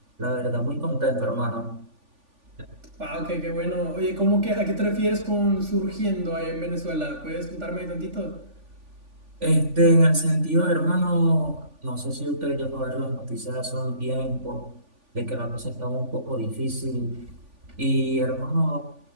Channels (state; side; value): late; left; 3.5 ms